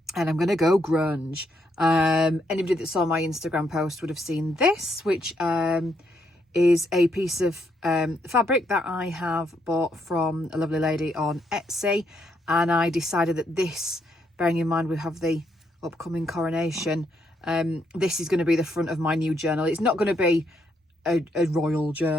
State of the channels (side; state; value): both; normal; correlation 0.76